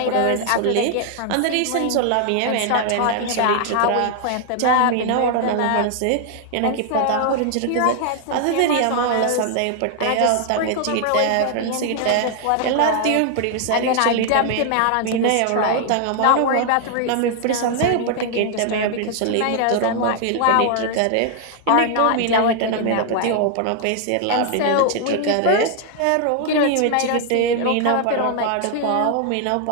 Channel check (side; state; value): both; different; correlation 0.00